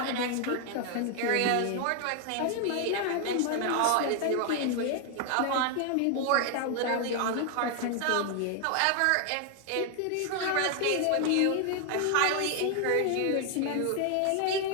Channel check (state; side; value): different; both; correlation 0.00